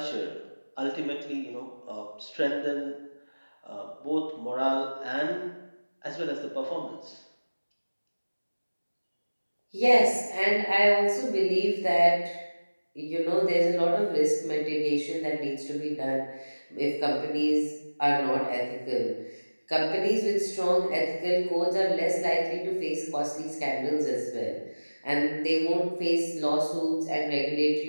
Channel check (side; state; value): both; inverted; correlation -1.00